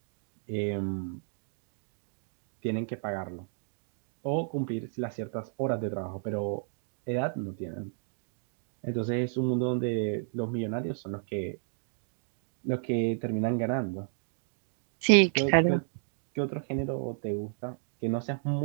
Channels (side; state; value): left; silent; digital silence